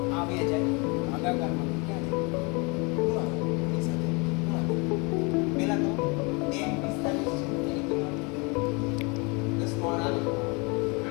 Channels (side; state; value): right; quieter; 29.9 dB